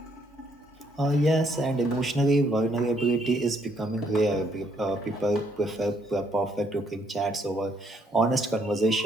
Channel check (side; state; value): both; normal; correlation 0.70